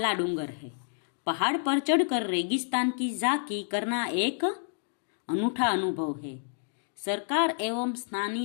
डूंगर है। पहाड़ पर चढ़कर रेगिस्तान की झांकी करना एक अनूठा अनुभव है। सरकार एवं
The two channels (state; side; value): silent; right; digital silence